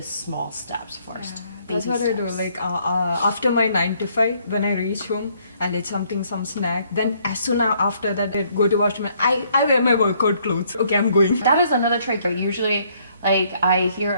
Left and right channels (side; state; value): both; inverted; correlation -0.67